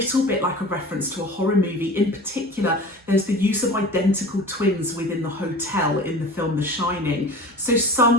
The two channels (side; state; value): both; normal; correlation 0.38